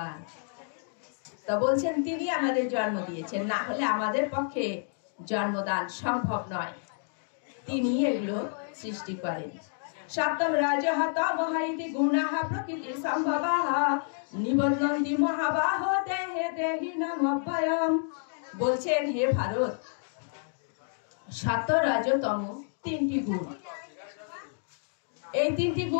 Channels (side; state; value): right; silent; digital silence